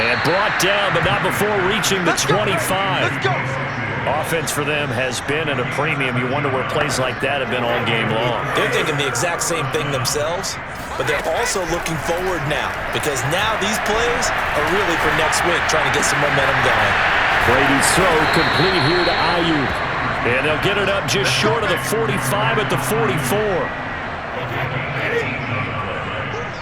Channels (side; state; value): both; identical; correlation 1.00